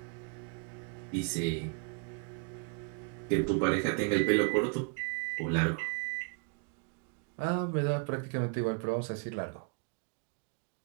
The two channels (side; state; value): left; quieter; 32.8 dB